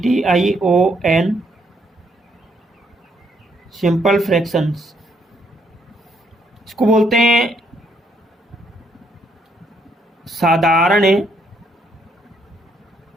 simple fractions, इसको बोलते हैं साधारण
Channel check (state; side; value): normal; both; correlation 0.72